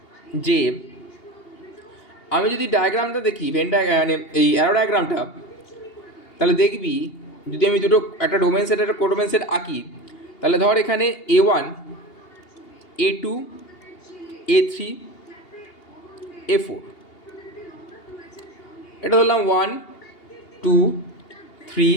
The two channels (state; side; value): late; right; 2.8 ms